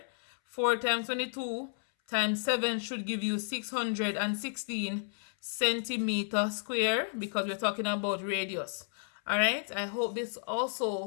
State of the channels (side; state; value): right; silent; 56 dB below the other